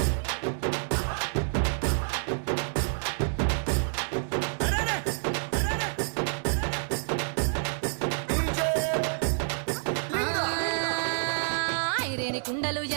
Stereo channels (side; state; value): left; silent; 59 dB below the other